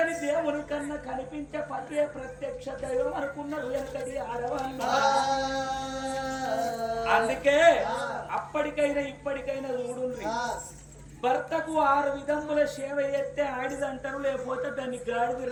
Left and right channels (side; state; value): both; identical; correlation 1.00